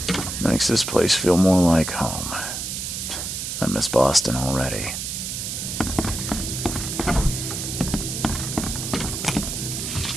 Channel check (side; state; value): right; noise; hiss, 4 dB below the sound